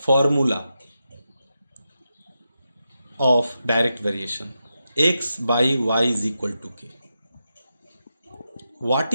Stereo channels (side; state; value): both; inverted; correlation -0.88